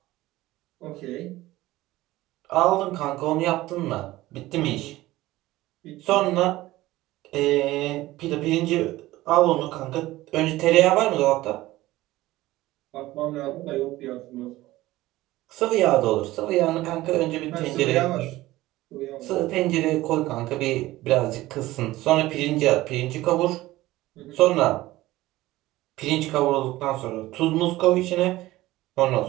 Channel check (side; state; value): left; quieter; 17.3 dB